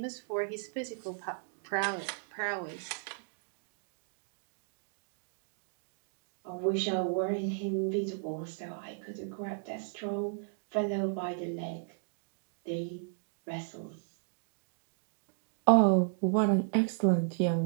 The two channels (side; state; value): left; silent; digital silence